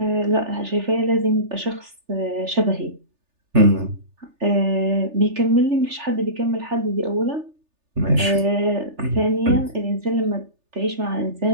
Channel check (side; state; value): left; late; 3.4 ms